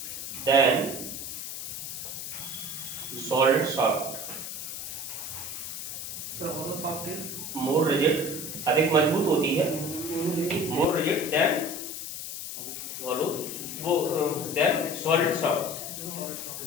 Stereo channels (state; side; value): noise; left; hiss, 7 dB below the sound